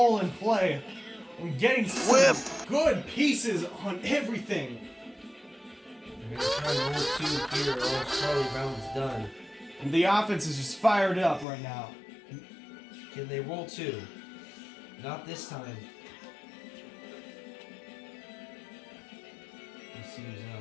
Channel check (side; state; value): right; drops out; at 11.5 s